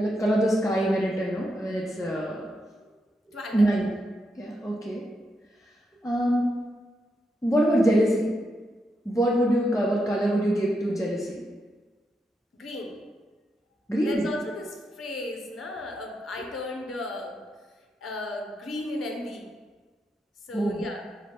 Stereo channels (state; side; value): normal; both; correlation 0.83